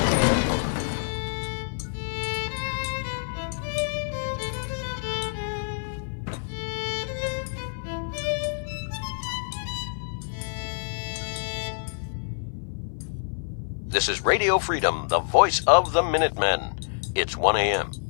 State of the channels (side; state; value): right; silent; 60 dB below the other